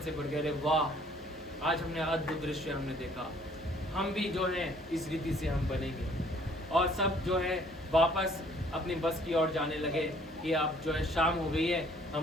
से भर गए, वाह आज हमने अद्भुत दृश्य हमने देखा, हम भी जो है इस रीति से हम बनेंगे। और सब जो है वापस अपनी बस की ओर जाने लगे कि अब जो है शाम हो गई है,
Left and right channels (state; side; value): normal; both; correlation 0.59